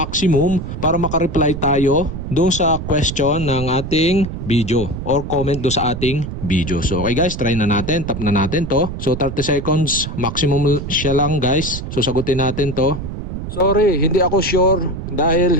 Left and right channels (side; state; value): right; noise; rumble, 7 dB below the sound